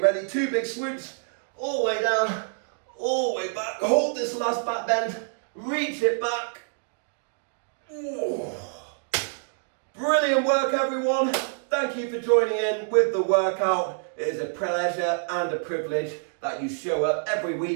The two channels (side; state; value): left; silent; digital silence